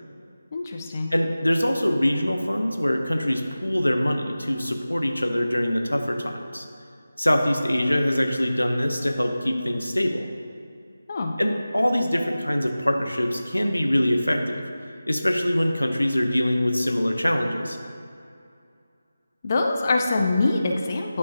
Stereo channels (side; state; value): both; inverted; correlation -0.96